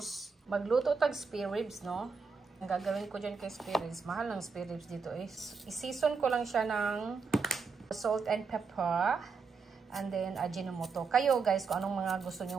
Magluto tag spare ribs, no? Ang gagawin ko dyan kay spare ribs, mahal ng spare ribs dito is i-season ko lang siya ng salt and pepper. And then ajinomoto. Kayo guys, kung anong mga gusto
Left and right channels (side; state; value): left; quieter; 5.0 dB